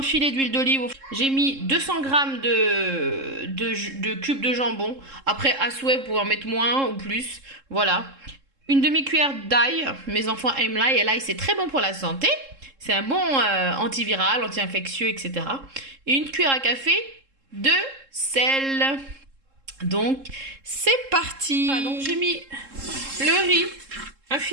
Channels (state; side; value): late; left; 3.7 ms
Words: filet d'huile d'olive. J'ai mis 200 grammes de cubes de jambon. Après, à souhait, vous pouvez en mettre moins ou plus. Voilà. Une demi-cuillère d'ail. Mes enfants aiment l'ail et l'ail, c'est très bon pour la santé. C'est un bon antiviral, anti-infectieux, etc. Et une cuillère à café de sel. Donc, c'est parti. Voilà, donc j'ai mis le riz, un